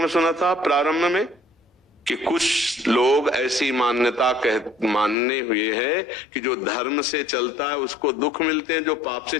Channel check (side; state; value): right; drops out; at 5.2 s